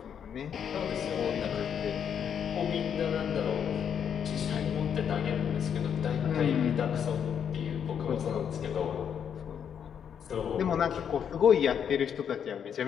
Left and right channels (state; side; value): quieter; right; 8.1 dB